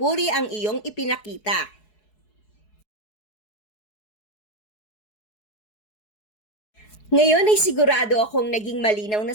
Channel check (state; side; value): late; right; 4.7 ms